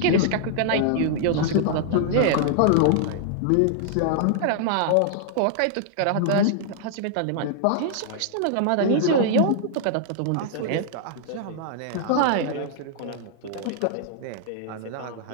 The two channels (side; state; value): both; different; correlation -0.01